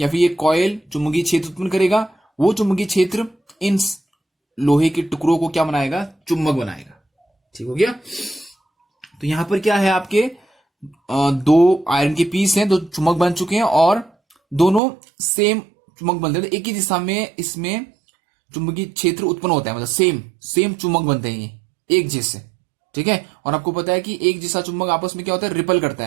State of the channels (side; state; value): left; drops out; at 14.8 s